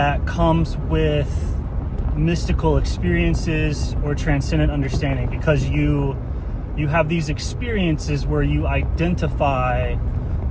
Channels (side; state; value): both; identical; correlation 1.00